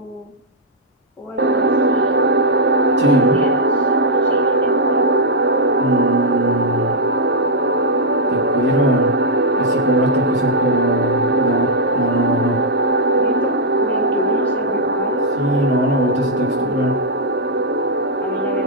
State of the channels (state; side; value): normal; both; correlation -0.05